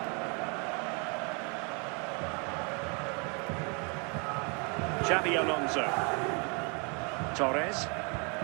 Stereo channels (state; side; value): quieter; left; 34.4 dB